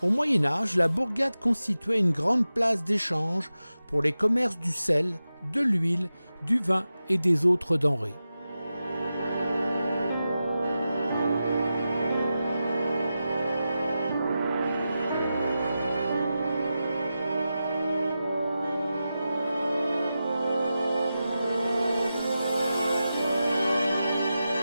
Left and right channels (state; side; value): inverted; both; correlation -0.92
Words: Au Moyen Âge, la bourgade constituait une grande place d'échange pour les commerces du sel, de l'huile, du vin et des autres denrées.